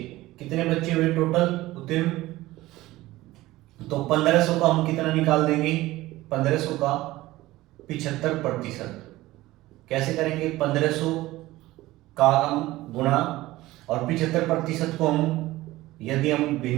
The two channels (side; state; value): left; quieter; 17.6 dB